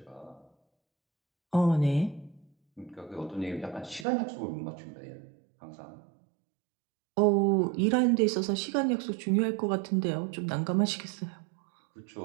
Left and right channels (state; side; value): drops out; left; at 4.0 s